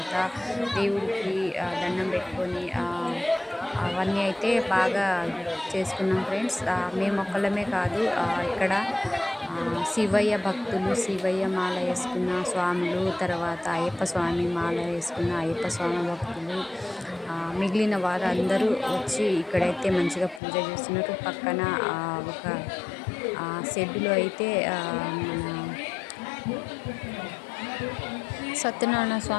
దేవుడికి దండం పెట్టుకొని అవన్నీ అయితే బాగా చేసుకున్నాం ఫ్రెండ్స్. మేము ఒక్కళ్ళమే కాదు, ఇక్కడ శివయ్య భక్తులు, శివయ్య మాల వేసుకున్న స్వాములు, తర్వాత అయ్యప్ప స్వామి మాల వేసుకున్న అయ్యప్ప స్వామి భక్తులు, మిగిలిన వారు అందరూ వచ్చి ఇక్కడైతే మంచిగా పూజ చేస్తున్నారు. పక్కన ఒక షెడ్డులో అయితే మన సత్యనారాయణ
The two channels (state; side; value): drops out; right; at 20.4 s